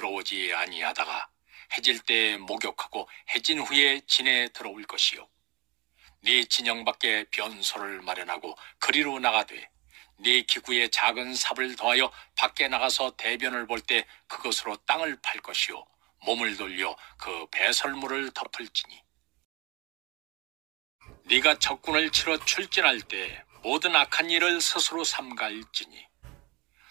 아니하다가 해질 때 목욕하고 해진 후에 진에 들어올 것이요. 네 진영 밖에 변소를 마련하고 그리로 나가되 네 기구에 작은 삽을 더하여 밖에 나가서 대변을 볼 때 그것으로 땅을 팔 것이요 몸을 돌려 그 배설물을 덮을지니 네가 적군을 치러 출진할 때 모든 악한 일을 스스로 삼가일지니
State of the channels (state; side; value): quieter; left; 24.7 dB